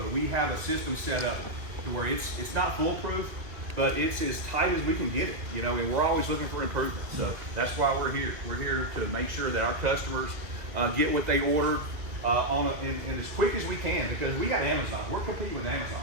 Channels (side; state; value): left; late; 2.0 ms